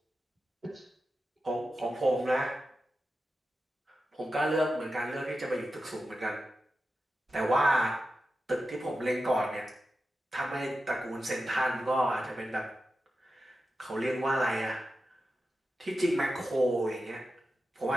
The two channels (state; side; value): normal; both; correlation 0.91